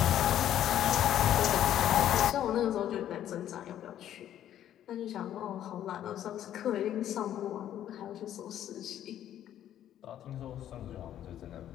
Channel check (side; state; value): right; quieter; 11.3 dB